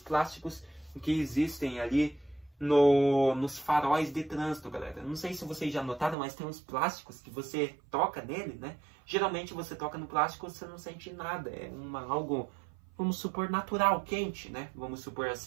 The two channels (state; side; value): drops out; left; at 6.2 s